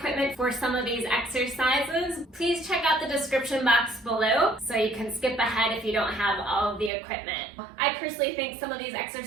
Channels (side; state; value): left; drops out; at 6.9 s